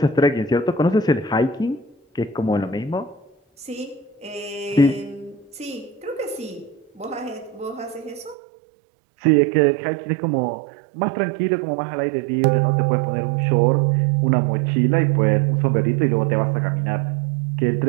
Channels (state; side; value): drops out; left; at 8.3 s